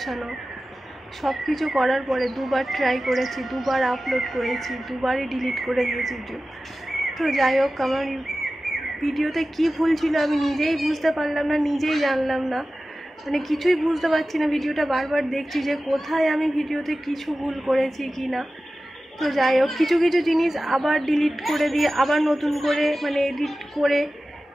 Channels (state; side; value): normal; both; correlation 0.95